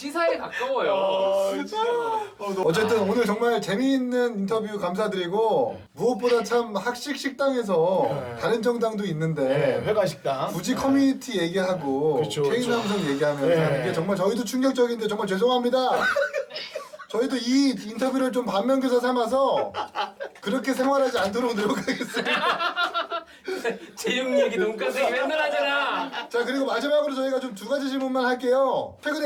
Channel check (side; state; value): both; identical; correlation 1.00